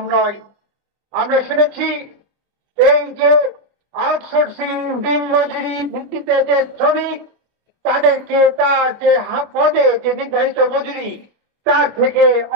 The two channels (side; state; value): left; late; 24 ms